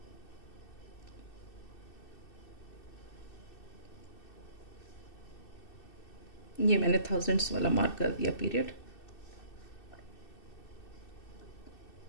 ये मैंने थाउजेंड्स वाला मार्क कर दिया पीरियड.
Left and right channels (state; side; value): late; right; 2.6 ms